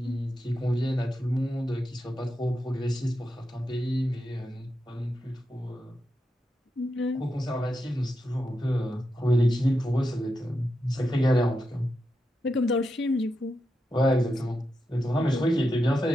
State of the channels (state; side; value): normal; both; correlation 0.87